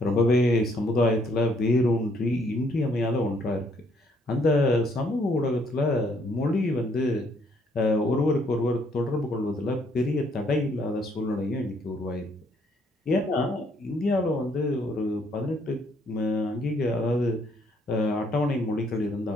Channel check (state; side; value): normal; both; correlation 0.67